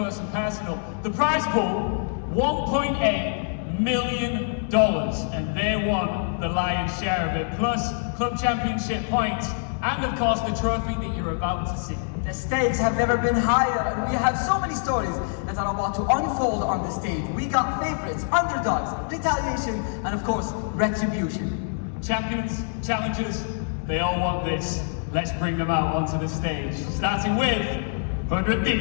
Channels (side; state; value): right; silent; 62 dB below the other